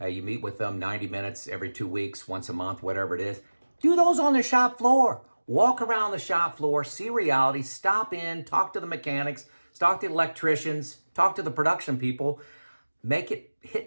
You meet with them 90 minutes every 2 weeks, once a month, whatever it is. Do those on the shop floor. Walk around the shop floor, see reality, stop in, talk to the mechanics, talk to the electricians, talk to the production people. Make it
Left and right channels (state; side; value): inverted; both; correlation -1.00